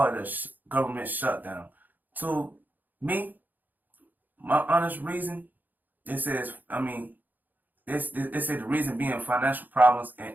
it a government shutdown. To me, my honest reason, they say the reason being financial problems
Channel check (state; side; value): late; left; 0.085 ms